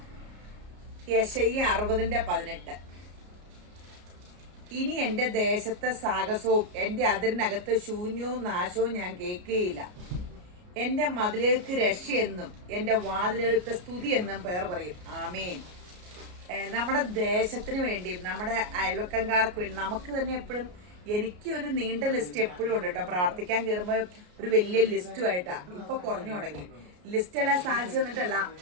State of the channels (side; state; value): left; late; 33 ms